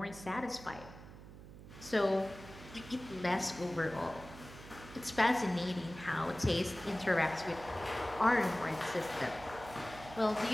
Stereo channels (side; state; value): right; noise; hum, 16 dB below the sound